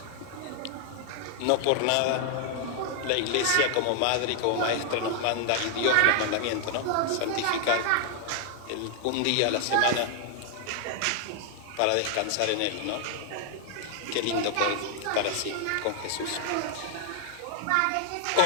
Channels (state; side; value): different; both; correlation 0.00